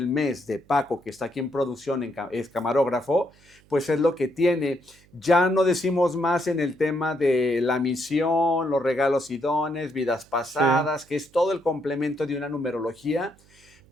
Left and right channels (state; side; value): noise; right; hum, 29 dB below the sound